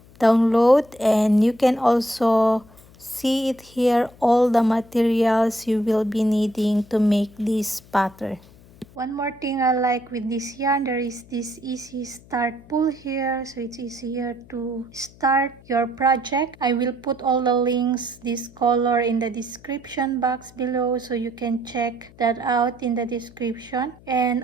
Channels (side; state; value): left; noise; hum, 24 dB below the sound